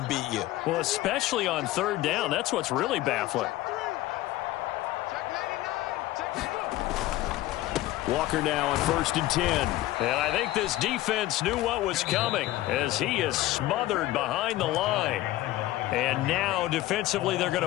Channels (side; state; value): right; quieter; 16.3 dB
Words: beat you. Well, especially on 3rd down. That's what's really baffling. Walker now on 1st and 10. And I think this defense knew what was coming as he is smothered behind the line. And now defensively they're